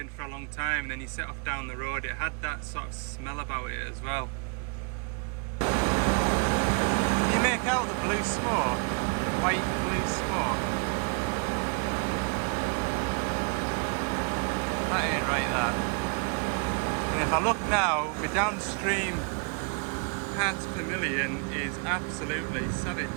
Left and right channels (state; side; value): quieter; left; 35.7 dB